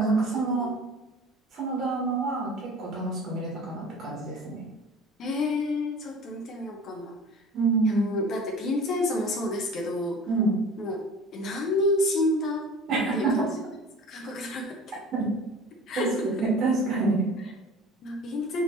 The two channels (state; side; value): normal; both; correlation 0.41